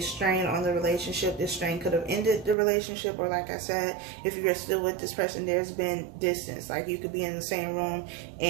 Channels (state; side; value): drops out; left; at 2.6 s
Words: strain on the relationship. This strain could have ended the relationship, or like I said, if you're still with this person, there's been distance. Like you could be in the same room